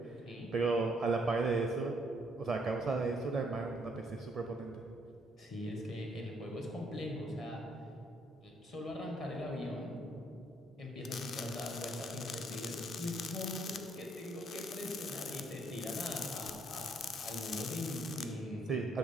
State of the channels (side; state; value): both; normal; correlation 0.69